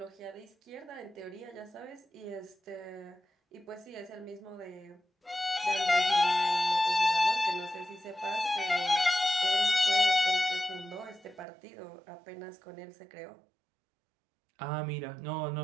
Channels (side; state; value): left; drops out; at 11.5 s